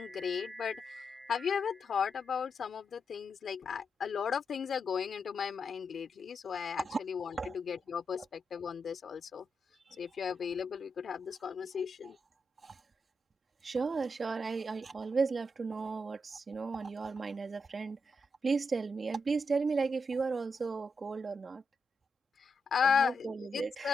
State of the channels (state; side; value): normal; both; correlation 0.83